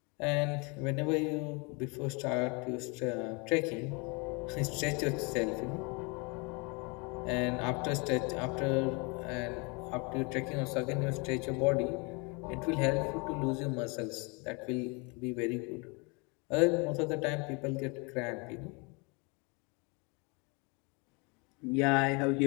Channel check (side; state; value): right; quieter; 30.6 dB